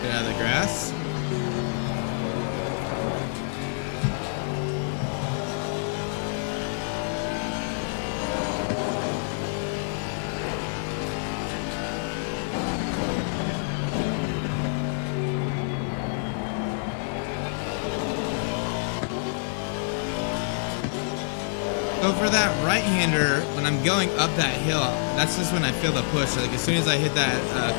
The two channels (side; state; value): right; silent; digital silence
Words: Get out of the grass. So for that right-hander, when I'm going up that hill, that's just when I feel the push. Like as soon as I hit that